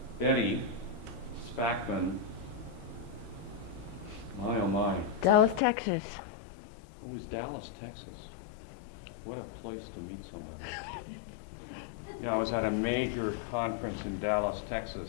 Betty Spackman. My oh my. Dallas, Texas. It was Dallas, Texas. What a place to meet somebody. Yeah, I was at a major conference in Dallas,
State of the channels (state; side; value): drops out; right; at 5.6 s